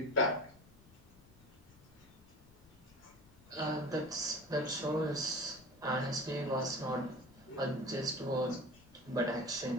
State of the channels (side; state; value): left; noise; rumble, 24 dB below the sound